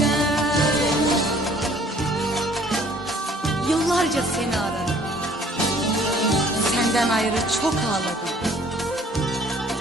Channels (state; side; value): normal; both; correlation 0.56